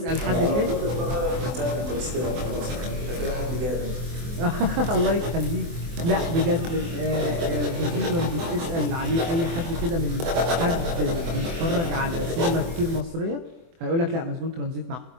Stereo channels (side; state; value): left; late; 24 ms